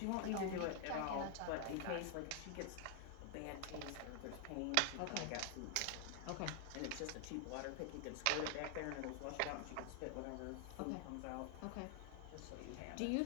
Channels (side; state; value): both; different; correlation 0.00